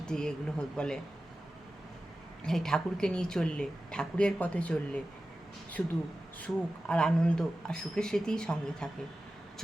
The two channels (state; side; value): normal; both; correlation 0.94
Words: এগুলো বলে। এই ঠাকুরকে নিয়ে চললে, ঠাকুরের পথে চললে শুধু সুখ আর আনন্দ আর সুখের স্মৃতিই সঙ্গে থাকে।